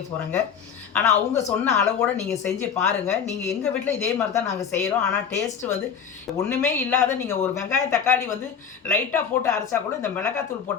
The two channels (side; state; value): right; quieter; 7.3 dB